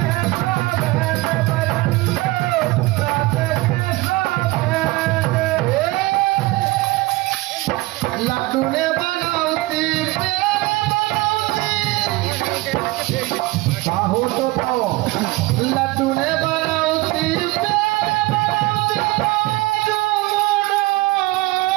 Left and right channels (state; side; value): quieter; left; 20.6 dB